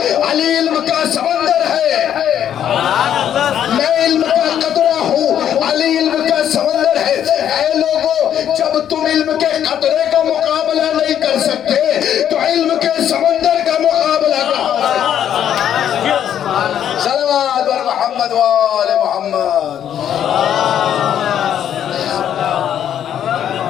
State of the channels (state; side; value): quieter; right; 9.9 dB